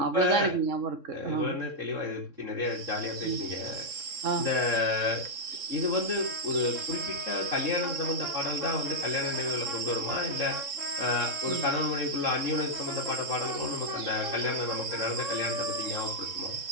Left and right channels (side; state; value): left; late; 3.6 ms